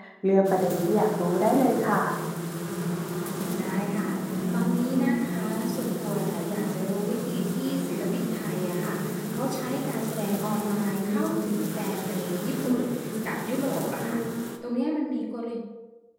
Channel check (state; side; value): identical; both; correlation 1.00